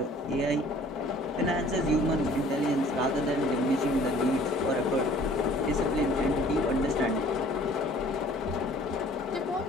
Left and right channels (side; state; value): both; normal; correlation 0.53